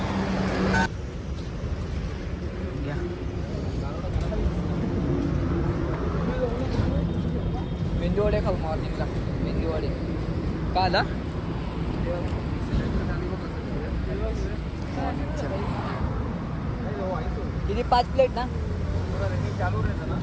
मेंदूवडे खाऊ मॉर्निंगला मेंदूवडे का आला किती 5 प्लेट ना चालू रहता ना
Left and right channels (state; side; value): identical; both; correlation 1.00